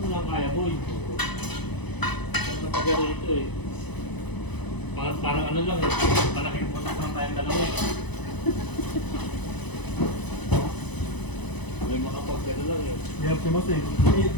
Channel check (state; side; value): late; right; 1.0 ms